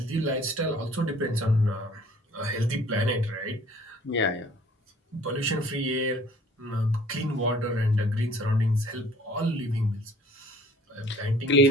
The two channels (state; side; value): normal; both; correlation 0.53